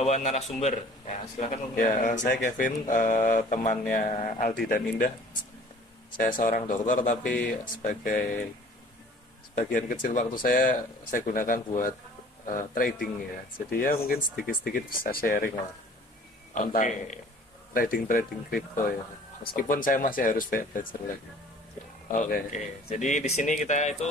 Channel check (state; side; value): normal; both; correlation 0.50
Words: narasumber. Ya, silakan. Ya, saya Kevin, temannya Aldi dan Indah. Saya seorang dokter tapi sebagian kecil waktu saya gunakan buat trading ya. Jadi ya mungkin sedikit-sedikit bisa sharing lah tentang trading kripto ya. Meskipun saya masih harus belajar lagi. Oke. Jadi di sini kita